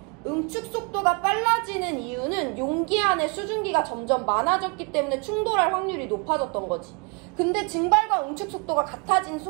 응축 속도가 빨라지는 이유는 용기 안에 수증기가 점점 많아졌기 때문에 충돌할 확률이 높아졌던 거지. 근데 증발과 응축 속도가 같아진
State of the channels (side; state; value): left; quieter; 33.1 dB